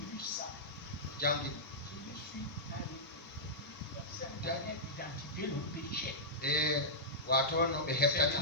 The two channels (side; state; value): both; normal; correlation -0.13